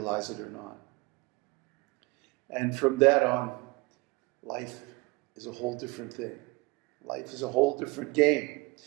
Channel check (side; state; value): left; quieter; 24.2 dB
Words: it or not. And from that on, life is a whole different thing. Life is a whole different game.